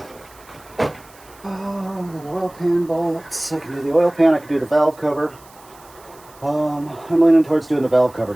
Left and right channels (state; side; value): noise; right; hiss, 25 dB below the sound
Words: Oh, the oil pan bolts. I can do the oil pan, I can do the valve cover. I'm leaning towards doing the valve cover